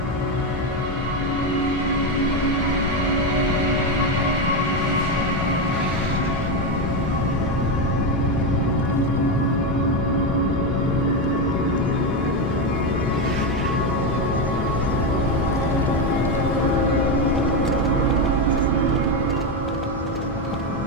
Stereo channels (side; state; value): both; normal; correlation 0.11